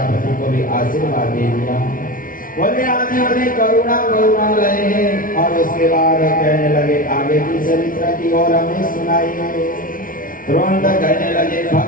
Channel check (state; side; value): late; right; 0.39 ms